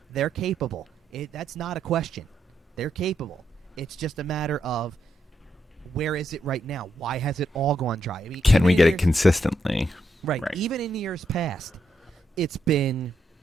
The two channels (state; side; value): normal; both; correlation 0.80